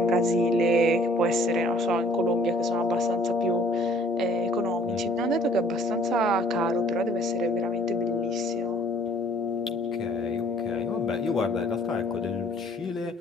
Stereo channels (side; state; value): both; normal; correlation 0.57